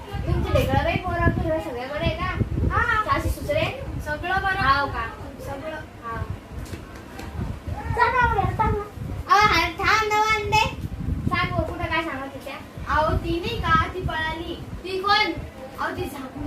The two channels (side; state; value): both; identical; correlation 1.00